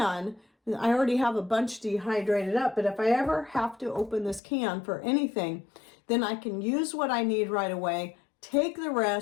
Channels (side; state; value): right; drops out; at 4.4 s